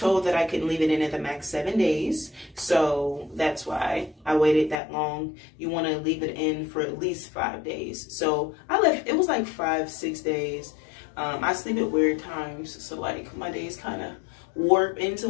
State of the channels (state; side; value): drops out; right; at 4.8 s